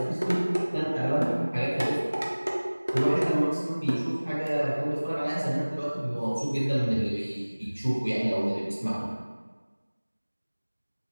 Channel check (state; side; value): inverted; both; correlation -1.00